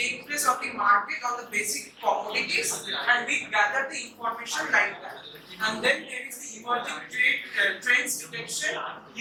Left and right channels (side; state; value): both; identical; correlation 1.00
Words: place on the market on the basic commodities, and we gather the information like that. And then there is the emerging trends detection,